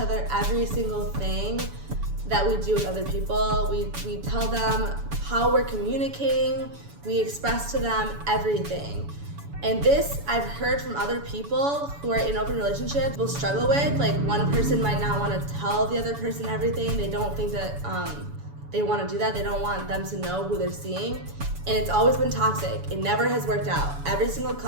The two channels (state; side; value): late; left; 7.0 ms